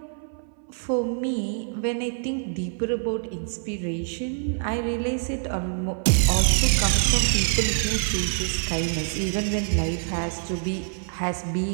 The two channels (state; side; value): silent; left; 58 dB below the other